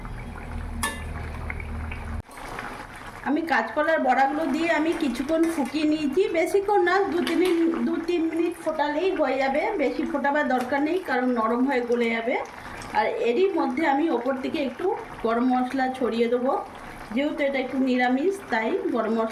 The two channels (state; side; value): identical; both; correlation 1.00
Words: আমি কাঁচকলার বড়াগুলো দিয়ে আমি কিছুক্ষণ ফুটিয়ে নিয়েছি, বেশিক্ষণ না, 2-3 মিনিট ফোটালেই হয়ে যাবে। বেশি ফোটাবার দরকার নেই, কারণ নরম হয়ে গলে যাবে। আর এরই মধ্যে আমি ওপর থেকে একটু গরম মশলা ছড়িয়ে দেবো। যেহেতু এটা একটু নিরামিষ, তাই গরম